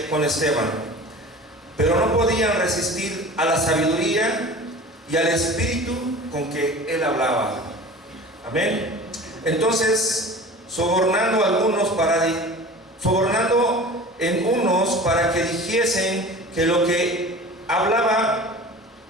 pero no podían resistir a la sabiduría y al espíritu con que él hablaba. Amén. Entonces, sobornando en unos para que dijesen que lo que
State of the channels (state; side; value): normal; both; correlation 0.39